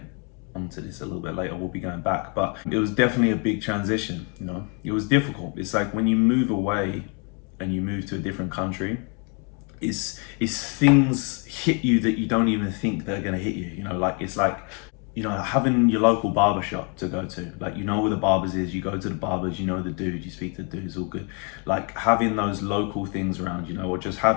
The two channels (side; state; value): right; quieter; 36.1 dB